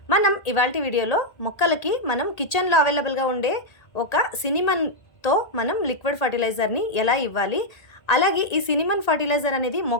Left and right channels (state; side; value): late; right; 1.8 ms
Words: మనం ఇవాల్టి వీడియోలో మొక్కలకి మనం కిచెన్లో అవైలబుల్గా ఉండే ఒక సినిమన్తో మనం లిక్విడ్ ఫర్టిలైజర్ని ఎలా ఇవ్వాలి, అలాగే ఈ సినిమన్ ఫర్టిలైజర్ అనేది